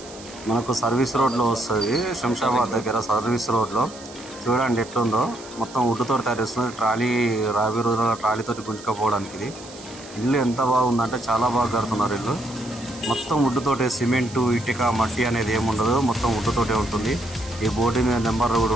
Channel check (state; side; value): noise; right; hiss, 18 dB below the sound